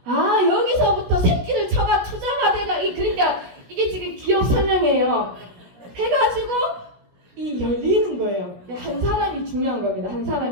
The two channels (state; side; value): late; left; 17 ms